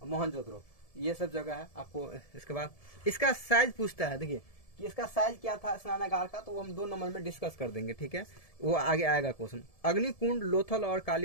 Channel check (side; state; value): right; late; 1.7 ms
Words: मोहनजोदड़ो, ये सब जगह है आपको। इसके बाद इसका साइज पूछता है, देखिए कि इसका साइज क्या था स्नानागार का, तो वो हम 2 नंबर में डिस्कस कर देंगे, ठीक है, वो आगे आएगा क्वेश्चन। अग्निकुंड लोथल और